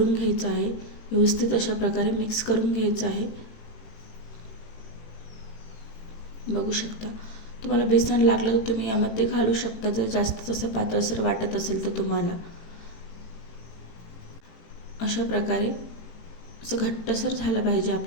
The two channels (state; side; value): late; right; 18 ms